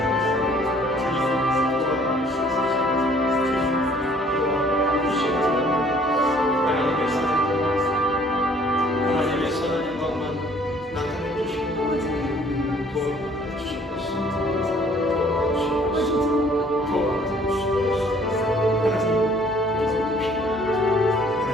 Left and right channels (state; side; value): normal; both; correlation 0.58